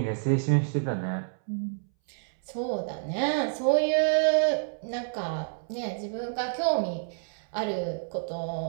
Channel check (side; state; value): left; silent; 59 dB below the other